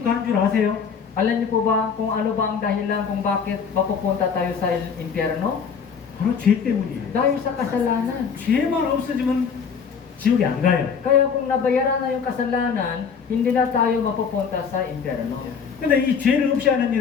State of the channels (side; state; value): right; quieter; 6.4 dB